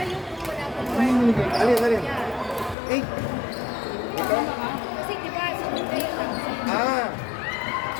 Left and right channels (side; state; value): right; drops out; at 2.8 s